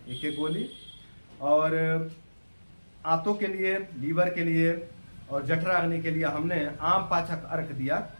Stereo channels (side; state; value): both; inverted; correlation -1.00